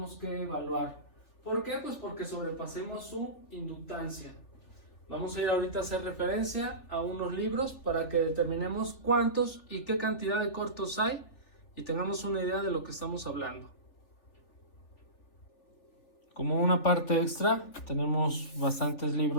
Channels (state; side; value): late; right; 3.4 ms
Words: que evaluar. ¿Por qué? Pues porque sobrepasemos su inductancia. Vamos a ir ahorita a hacer referencia a unos libros para que determinemos cuántos y qué cantidad de cortos hay y tengamos una idea de lo que estamos hablando. Como una parte extra, tenemos bastantes